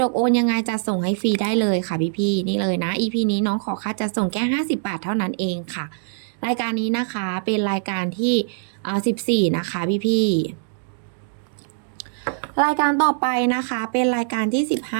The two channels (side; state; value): left; silent; digital silence